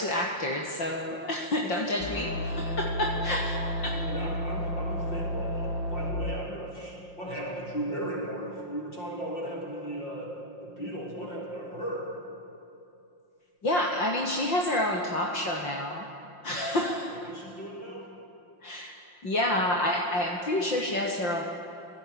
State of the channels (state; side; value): late; right; 5.7 ms